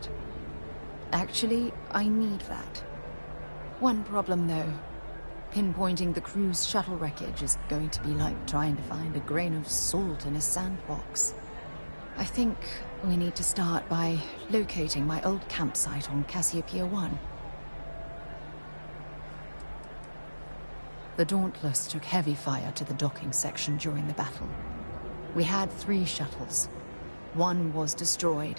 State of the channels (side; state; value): both; inverted; correlation -1.00